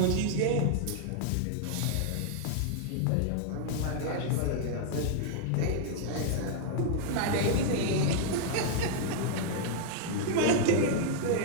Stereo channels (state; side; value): different; both; correlation -0.01